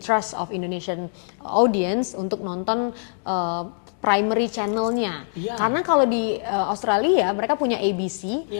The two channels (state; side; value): silent; right; 61 dB below the other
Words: of Indonesian audience untuk nonton primary channelnya, karena kalau di Australia mereka punya ABC